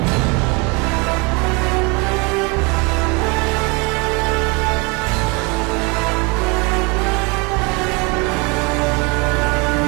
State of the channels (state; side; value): quieter; left; 29.1 dB